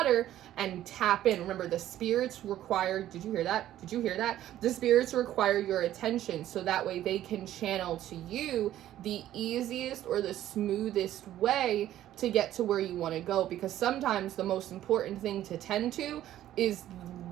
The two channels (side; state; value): left; quieter; 12.8 dB